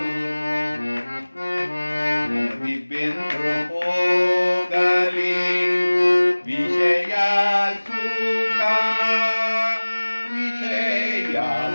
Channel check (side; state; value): both; inverted; correlation -1.00